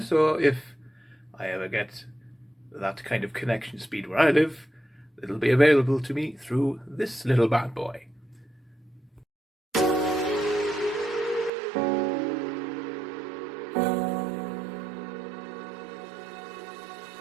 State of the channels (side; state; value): left; drops out; at 11.5 s